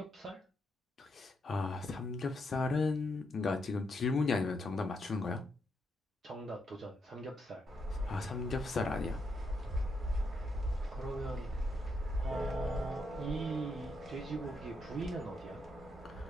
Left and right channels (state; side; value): normal; both; correlation 0.80